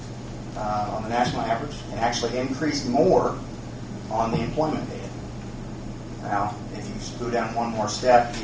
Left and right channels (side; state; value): both; identical; correlation 1.00